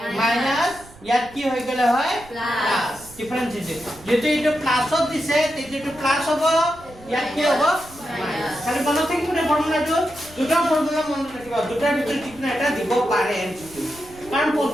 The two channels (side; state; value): right; noise; rumble, 22 dB below the sound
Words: মাইনাস ইয়াত কি হৈ গলে হয় প্লাস ডিফারেন্স দিছে যেটো এটো প্লাসত দিছে তেটো এটো প্লাস হ'ব ইয়াত কি হ'ব মাইনাস খালি মনত থাকিব না ফর্মুলাটো দুটা ফর্মুলা মনত ৰাখিবা দুটাৰ ভিতৰত যিকোনো এটা দিব পাৰে MCQ কাৰণ